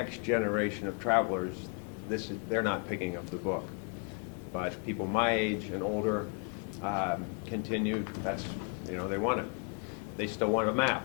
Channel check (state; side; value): quieter; right; 37.0 dB